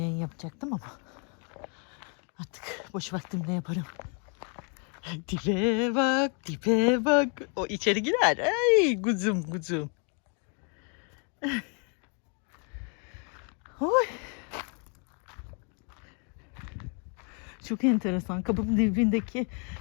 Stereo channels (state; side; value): quieter; right; 38.6 dB